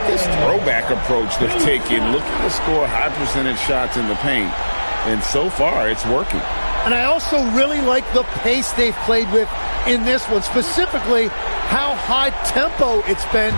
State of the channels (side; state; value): both; inverted; correlation -1.00